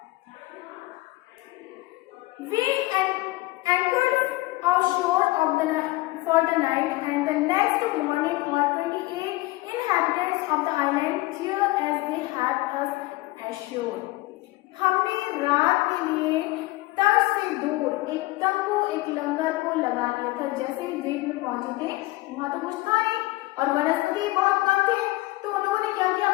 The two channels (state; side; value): quieter; right; 20.1 dB